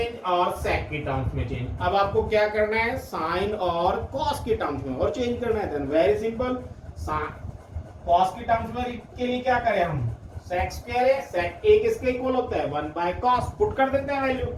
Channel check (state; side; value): identical; both; correlation 1.00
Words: और सेक की टर्म्स में चेंज। अब आपको क्या करना है? साइन और कॉस की टर्म्स में और चेंज करना है। देन वेरी सिंपल, कॉस की टर्म्स में के लिए क्या करें हम? सेक स्क्वायर है, सेक ए किसके इक्वल होता है? 1 बाय कॉस। पुट कर देते हैं वैल्यू,